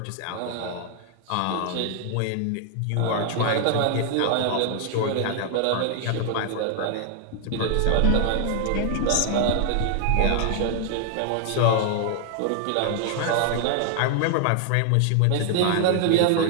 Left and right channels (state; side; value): different; both; correlation 0.00